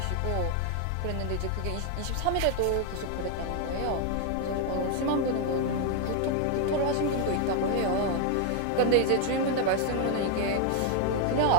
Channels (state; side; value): different; both; correlation 0.00